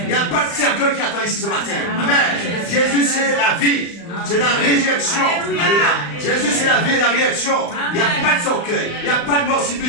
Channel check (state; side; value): late; right; 35 ms